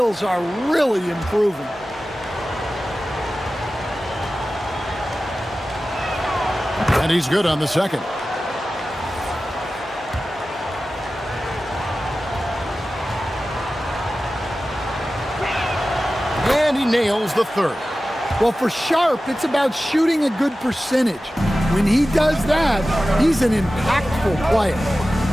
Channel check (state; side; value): normal; both; correlation 0.95